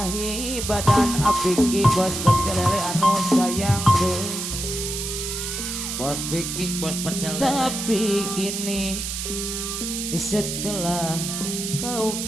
badan apiki bos pecelele anu sayang deh Bos Biki, bos pecel. tapi kini setelah kau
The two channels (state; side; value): noise; right; hiss, 4 dB below the sound